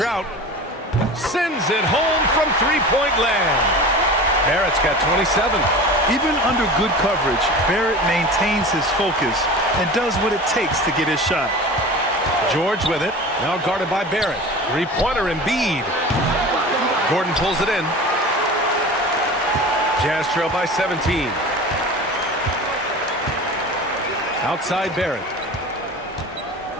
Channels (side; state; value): both; normal; correlation 0.35